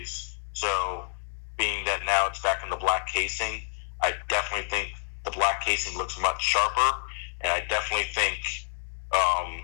So being that now it's back in the black casing, I definitely think the black casing looks much sharper, and I definitely think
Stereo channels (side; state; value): right; silent; 59 dB below the other